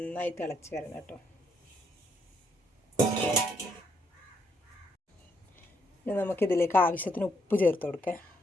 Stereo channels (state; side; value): normal; both; correlation 0.74